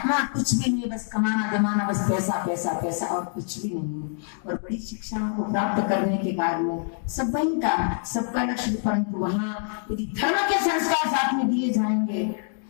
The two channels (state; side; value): silent; right; 61 dB below the other